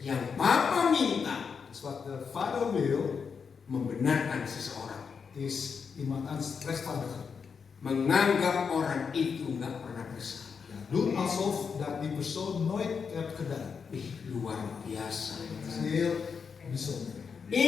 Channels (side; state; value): right; quieter; 6.0 dB